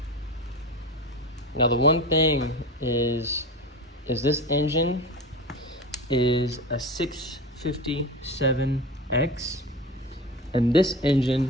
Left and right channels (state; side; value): normal; both; correlation 0.28